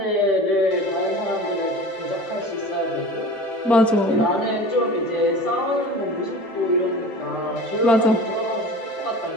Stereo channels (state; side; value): normal; both; correlation 0.38